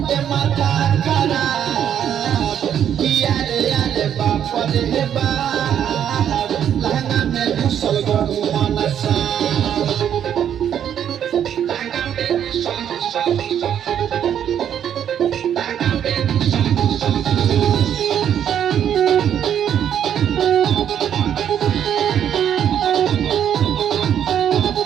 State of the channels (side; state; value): left; quieter; 9.5 dB